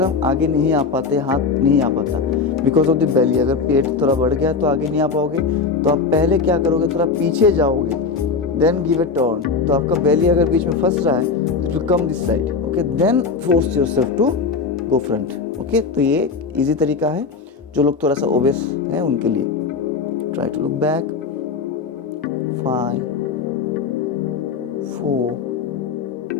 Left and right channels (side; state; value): right; quieter; 4.9 dB